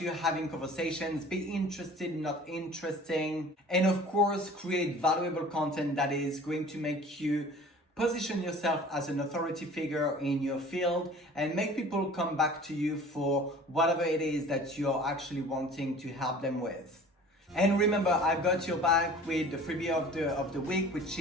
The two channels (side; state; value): both; normal; correlation 0.45